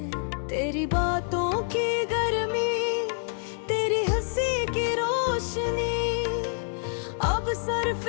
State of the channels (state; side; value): silent; right; 60 dB below the other